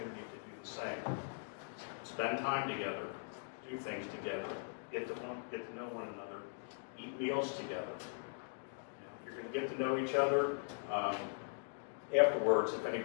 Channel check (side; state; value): right; silent; digital silence